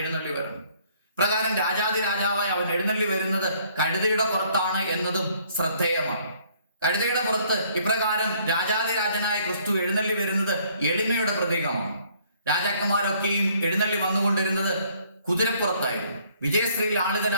വരണം. പ്രകാരം രാജാതിരാജാവായി അവൻ എഴുന്നള്ളി വരുന്നത് കഴുതയുടെ പുറത്താണ് എന്നതും ശ്രദ്ധേയമാണ്. കഴുതയുടെ പുറത്ത് ഇപ്രകാരം രാജാതിരാജനായ ക്രിസ്തു എഴുന്നള്ളി വരുന്നത് എളിമയുടെ പ്രതീകമാണ്. രാജാക്കന്മാരൊക്കെയും എഴുന്നള്ളി വന്നുകൊണ്ടിരുന്നത് കുതിരപ്പുറത്തായിരുന്നു. വിജയശ്രീയിൽ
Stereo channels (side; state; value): both; inverted; correlation -0.62